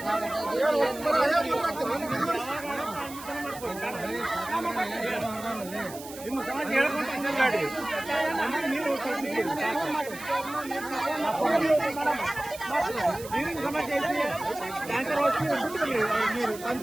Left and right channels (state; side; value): noise; right; hiss, 15 dB below the sound